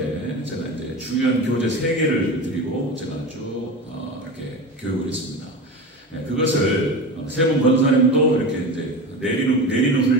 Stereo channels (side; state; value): both; normal; correlation 0.27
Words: 제가 이제 중요한 교재 3개를 드리고 제가 쭉 이렇게 교육을 했습니다. 그것을 세 분 권사님도 이렇게 이제 내리는